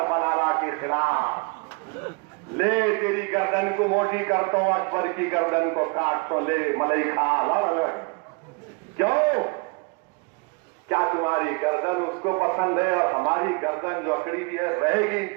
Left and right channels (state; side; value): quieter; left; 31.8 dB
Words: بلالا کے خلاف، لے تیری گردن کو موٹی کرتا ہوں، اکبر کی گردن کو کاٹ تو لے ملئی کھا لڑ۔ کیوں؟ کیا تمہاری گردن اس کو پسند ہے؟ اور ہماری گردن جو اکڑی بھی ہے رہے گی